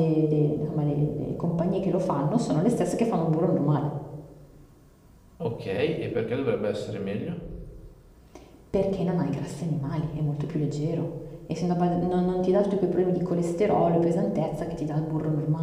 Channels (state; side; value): identical; both; correlation 1.00